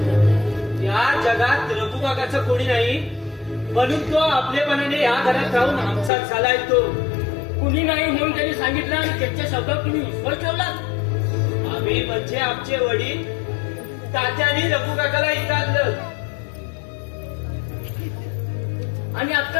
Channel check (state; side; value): drops out; right; at 6.1 s